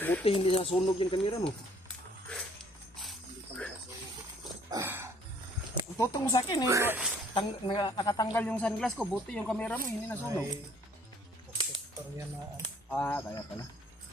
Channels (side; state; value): both; normal; correlation 0.60